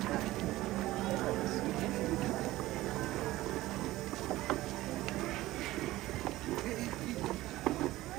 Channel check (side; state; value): left; quieter; 17.0 dB